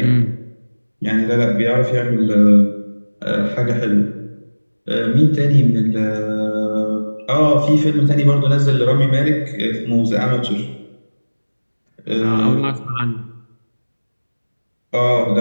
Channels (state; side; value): inverted; both; correlation -1.00